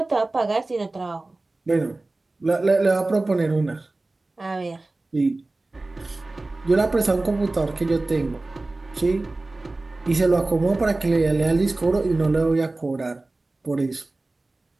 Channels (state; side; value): quieter; left; 3.0 dB